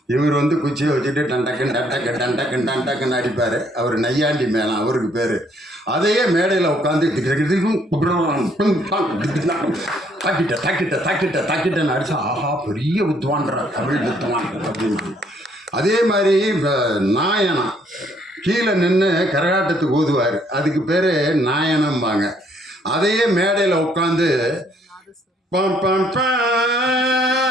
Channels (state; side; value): normal; both; correlation 0.66